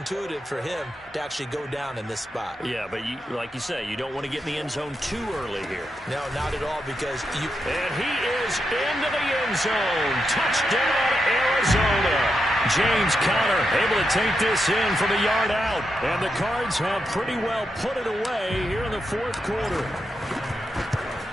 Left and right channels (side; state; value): both; normal; correlation 0.85